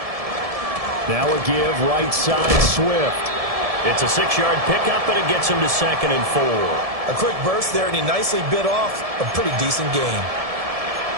Now a give right side Swift. It's a 6-yard pickup, and it gets him to 2nd and 4. A quick burst there, and he nicely bit off a pretty decent gain.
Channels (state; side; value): late; left; 1.7 ms